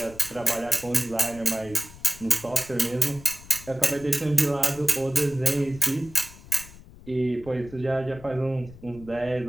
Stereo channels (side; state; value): left; noise; rumble, 18 dB below the sound